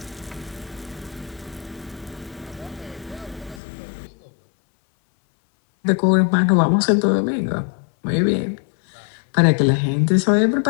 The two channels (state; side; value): drops out; right; at 3.6 s